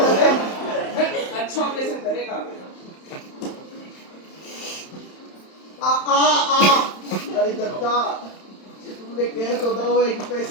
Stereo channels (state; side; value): late; right; 31 ms